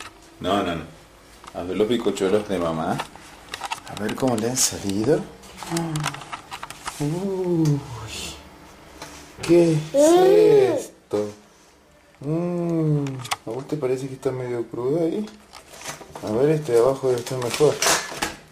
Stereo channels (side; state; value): both; identical; correlation 1.00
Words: No. A ver los bizcochuelos de mamá. A ver cómo le han salido. Uy, ¿qué es esto? ¿A vos te parece que está medio crudo ahí? A ver, este de abajo debe estar mejor.